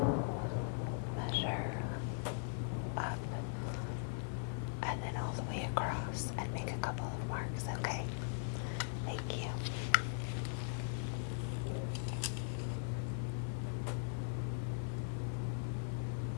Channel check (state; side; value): quieter; right; 39.6 dB